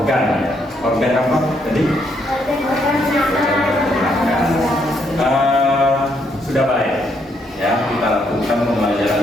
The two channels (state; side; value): normal; both; correlation 0.74